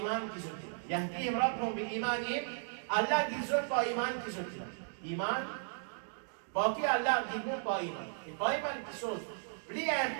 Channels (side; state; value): left; silent; digital silence